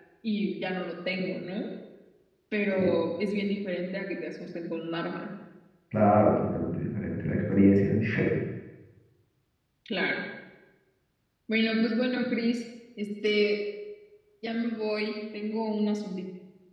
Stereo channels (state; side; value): identical; both; correlation 1.00